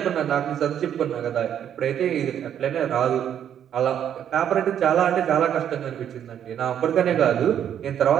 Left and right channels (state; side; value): quieter; left; 9.5 dB